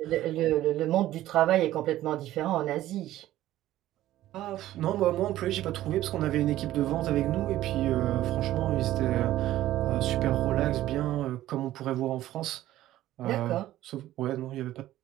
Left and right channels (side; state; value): left; quieter; 14.3 dB